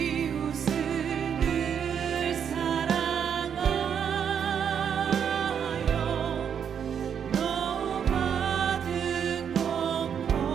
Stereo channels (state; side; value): quieter; left; 7.9 dB